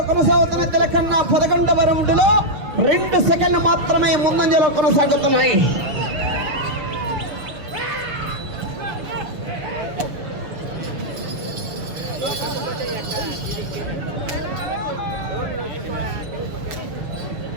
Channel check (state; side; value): late; left; 6.8 ms